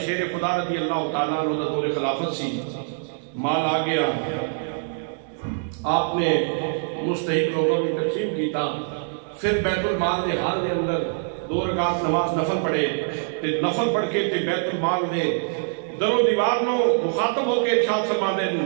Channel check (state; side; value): silent; left; digital silence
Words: شیر خدا رضی اللہ تعالیٰ عنہ دور خلافت سی، مال آ گیا، آپ نے مستحق لوگوں کی تقسیم کیتا. پھر بیت المال دے حال دے اندر 2 رکعت نماز نفل پڑھے تے نفل پڑھ کے تے بیت المال دے در و دیوار نو مخاطب ہو کے ارشاد فرما دے